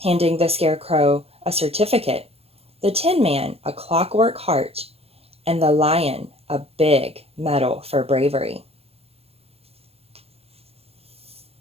handing the Scarecrow a certificate, the Tin Man a clockwork heart, and the Lion a big medal for bravery.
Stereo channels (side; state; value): left; late; 0.29 ms